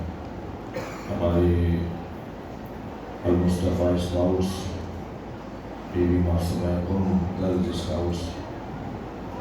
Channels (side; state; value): both; identical; correlation 1.00